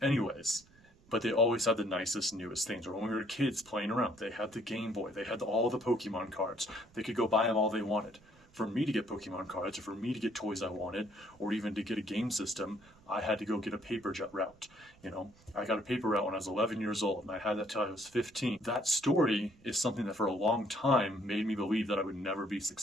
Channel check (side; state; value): right; noise; rumble, 28 dB below the sound